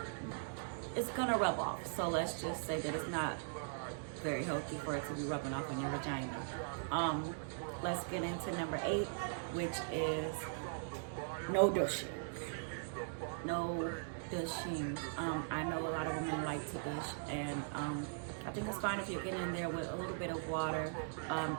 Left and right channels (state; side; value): silent; left; digital silence